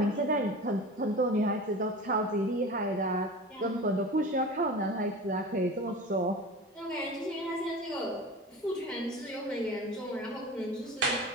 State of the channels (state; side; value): normal; both; correlation 0.34